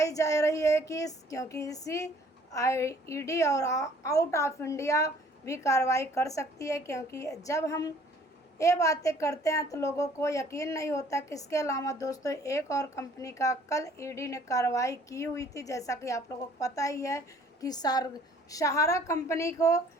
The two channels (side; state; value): both; normal; correlation 0.56